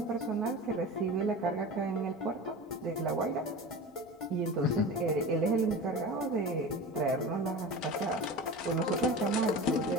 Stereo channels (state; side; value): normal; both; correlation 0.31